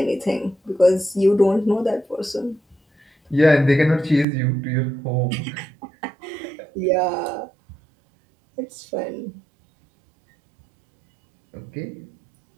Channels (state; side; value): drops out; left; at 4.2 s